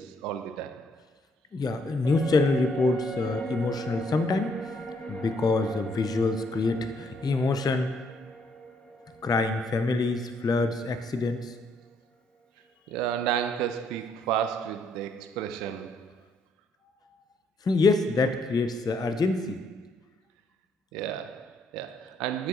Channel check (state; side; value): normal; both; correlation 0.70